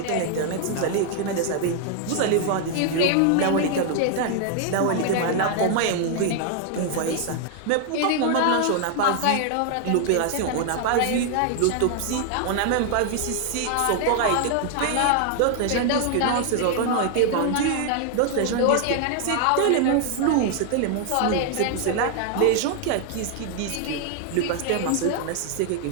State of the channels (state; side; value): different; both; correlation 0.00